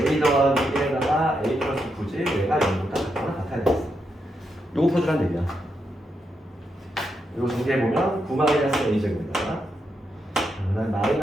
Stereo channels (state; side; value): normal; both; correlation 0.82